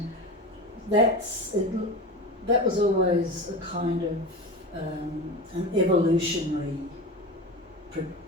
that was always a kind of an evolutionary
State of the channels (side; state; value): both; normal; correlation 0.27